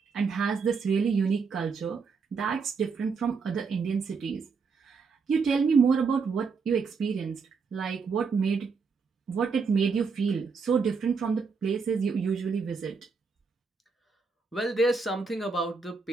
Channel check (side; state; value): left; quieter; 5.1 dB